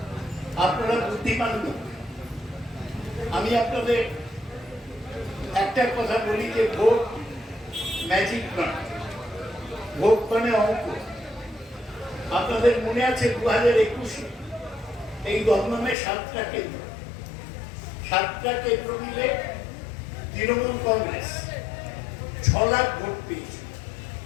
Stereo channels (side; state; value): right; drops out; at 16.0 s